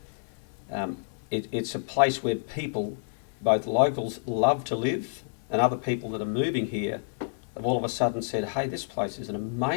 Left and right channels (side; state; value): right; silent; 59 dB below the other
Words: It's a place where people, both locals, love to live, and other people that are moving here have all of a sudden said, hey, this place is an